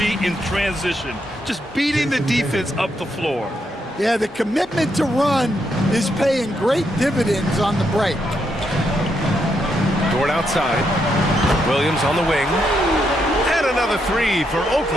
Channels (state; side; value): normal; both; correlation 0.79